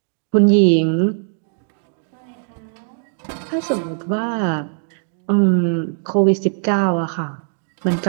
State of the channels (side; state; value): left; silent; digital silence